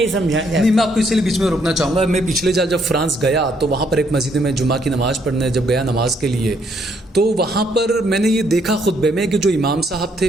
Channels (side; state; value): both; normal; correlation 0.71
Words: سمجھا جاتا. نہیں، میں آپ کو اس لیے بیچ میں روکنا چاہوں گا. میں پچھلے سال جب فرانس گیا تو وہاں پر ایک مسجد میں جمعہ کی نماز پڑھنے جب گیا نماز کے لیے، تو وہاں پر میں نے یہ دیکھا خطبے میں کہ جو امام صاحب